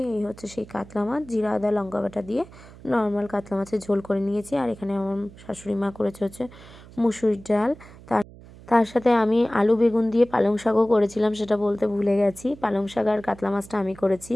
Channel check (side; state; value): right; noise; hum, 20 dB below the sound